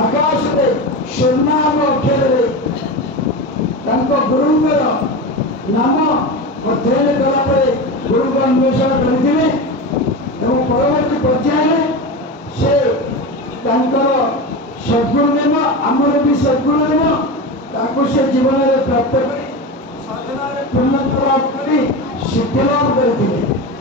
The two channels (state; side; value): normal; both; correlation 0.23